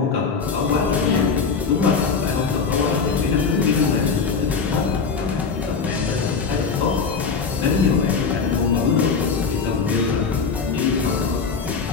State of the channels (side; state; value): right; quieter; 5.3 dB